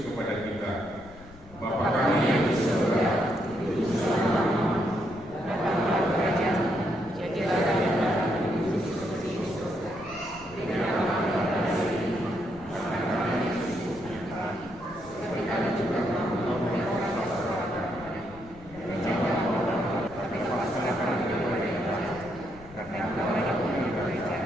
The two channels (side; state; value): left; noise; rumble, 20 dB below the sound